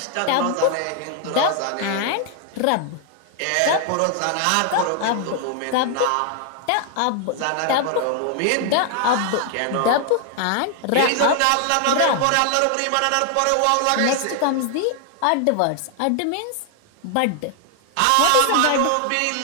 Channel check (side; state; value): both; different; correlation 0.00